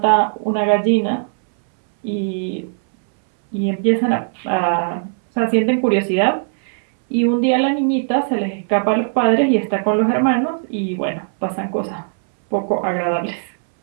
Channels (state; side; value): silent; left; 64 dB below the other